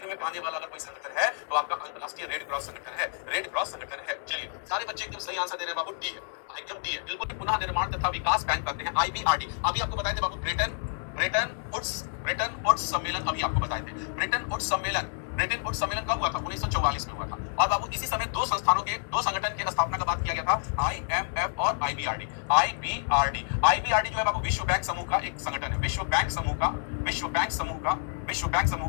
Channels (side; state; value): right; silent; digital silence